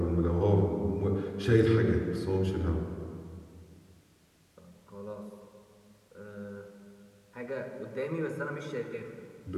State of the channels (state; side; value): identical; both; correlation 1.00